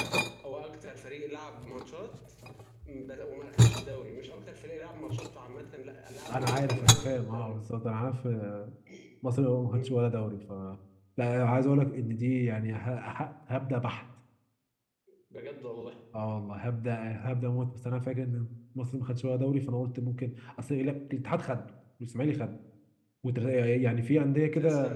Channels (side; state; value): both; identical; correlation 1.00